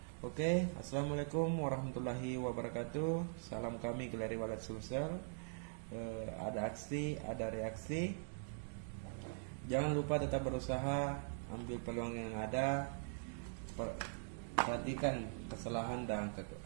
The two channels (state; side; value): silent; left; digital silence